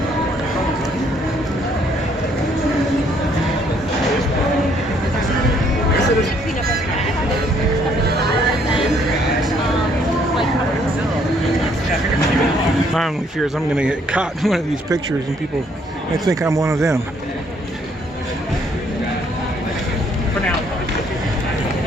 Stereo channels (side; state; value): both; normal; correlation 0.66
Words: profoundly fears I'm gonna get caught in one of these pictures and people might think I'm one of them. For now.